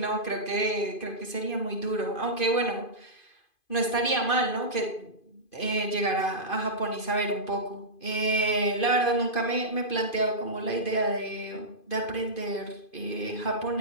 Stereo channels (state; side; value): late; right; 2.5 ms